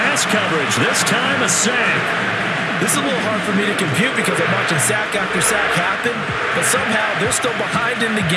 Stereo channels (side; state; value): both; identical; correlation 1.00